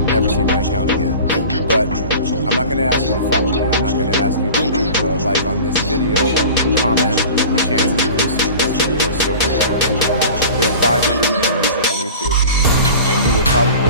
never see my account again. But I'm not going to ask you to follow me. I'm not going to ask you to leave a like on this video or comment. The chances of you seeing this video are so rare. There's 500 million users on YouTube, and you will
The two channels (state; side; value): inverted; both; correlation -0.39